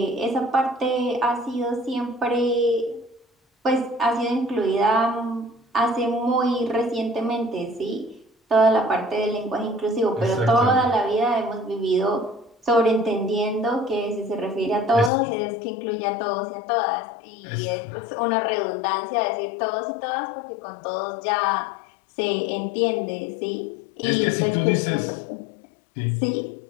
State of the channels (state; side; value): drops out; right; at 15.1 s